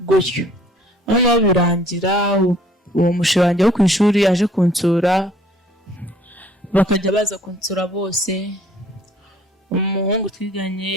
gutyo. Noneho birangira uwo mushira wanjye wo ku ishuri aje kunsura bakajya baza kunsura bose. Umuhungu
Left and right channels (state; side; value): normal; both; correlation 0.57